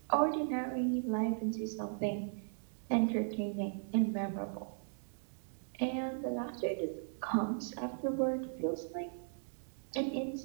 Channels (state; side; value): silent; left; digital silence